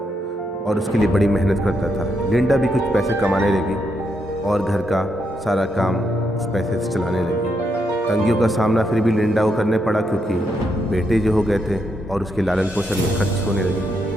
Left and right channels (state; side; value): normal; both; correlation 0.80